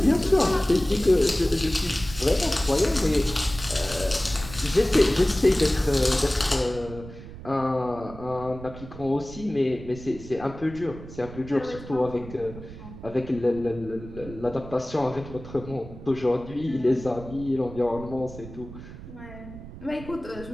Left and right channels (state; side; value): noise; right; rumble, 14 dB below the sound